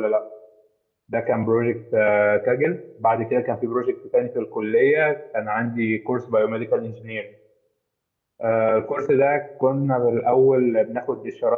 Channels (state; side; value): identical; both; correlation 1.00